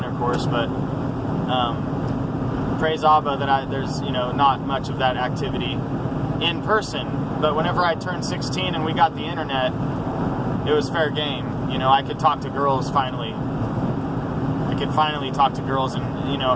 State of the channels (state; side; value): identical; both; correlation 1.00